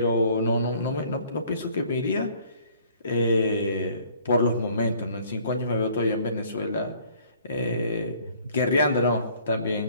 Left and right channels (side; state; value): both; inverted; correlation -0.57